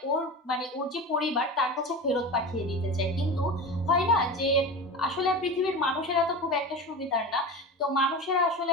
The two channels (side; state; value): both; normal; correlation 0.28